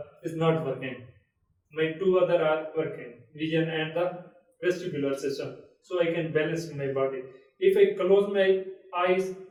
is not working, my two other are working, vision and the vestibular system. So I can balance my body. If I close my eyes,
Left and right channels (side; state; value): both; identical; correlation 1.00